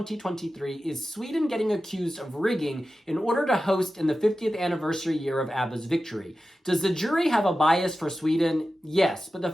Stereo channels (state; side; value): normal; both; correlation 0.93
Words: is Sweden getting accused of rigging in order to host in the 50th anniversary year of ABBA's victory. Does the jury have a bias for Sweden? Yes, but the